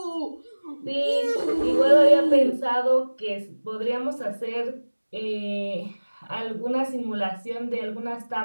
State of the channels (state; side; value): inverted; both; correlation -1.00